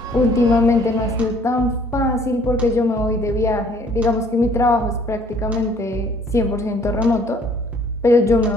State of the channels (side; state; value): both; normal; correlation 0.59